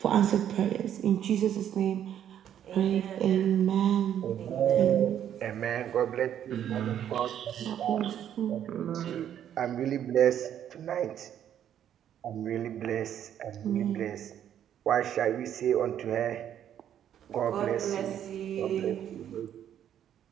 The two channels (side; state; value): left; quieter; 10.1 dB